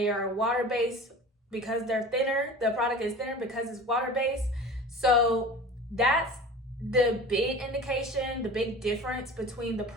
are water-based because they're thinner. The product is thinner because it's water-based. So that's the big indication, the big difference between the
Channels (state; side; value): normal; both; correlation 0.38